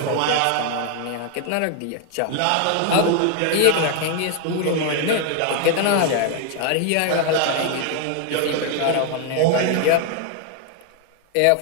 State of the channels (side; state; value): both; different; correlation 0.00